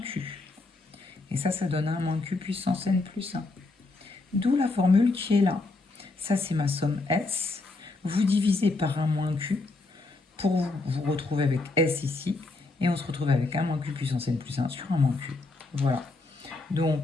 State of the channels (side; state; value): right; quieter; 3.4 dB